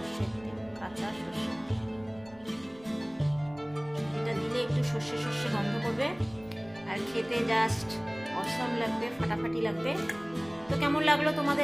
তেল, কাঁচা সর্ষে। এটা দিলে একটু সর্ষে সর্ষে গন্ধ করবে আর খেতে জাস্ট অসাম লাগবে, ফাটাফাটি লাগবে। তো কেমন লাগলো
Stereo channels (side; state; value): right; noise; rumble, 24 dB below the sound